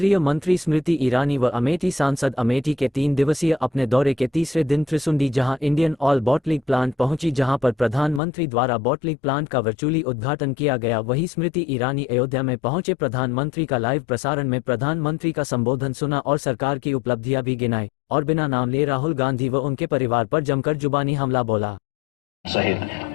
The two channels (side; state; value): right; drops out; at 8.2 s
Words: मंत्री स्मृति ईरानी व अमेठी सांसद अमेठी के 3 दिवसीय अपने दौरे के तीसरे दिन त्रिसुंडी जहां इंडियन ऑयल बॉटलिंग प्लांट पहुंची, जहां पर प्रधानमंत्री द्वारा बॉटलिंग प्लांट का वर्चुअली उद्घाटन किया गया। वहीं स्मृति ईरानी अयोध्या में पहुंचे प्रधानमंत्री का लाइव प्रसारण में प्रधानमंत्री का संबोधन सुना और सरकार की उपलब्धियां भी गिनाई और बिना नाम लिए राहुल गांधी व उनके परिवार पर जमकर जुबानी हमला बोला।